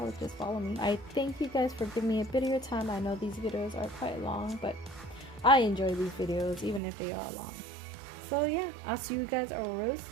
just follow me. I thank you guys for giving me a bit of your time. I know these videos are quite long, but I enjoy these videos even if they are long. So yeah, I'll see you guys real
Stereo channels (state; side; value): drops out; left; at 6.8 s